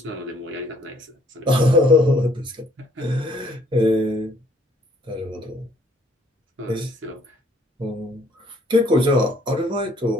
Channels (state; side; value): normal; both; correlation 0.63